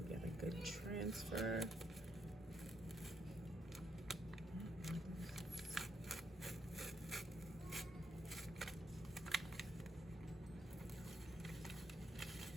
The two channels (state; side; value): normal; both; correlation 0.76